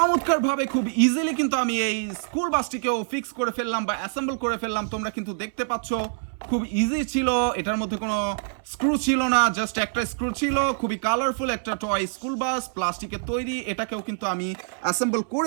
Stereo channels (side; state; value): left; silent; 60 dB below the other